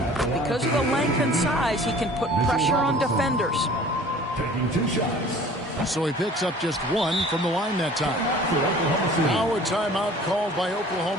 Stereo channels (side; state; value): both; normal; correlation 0.47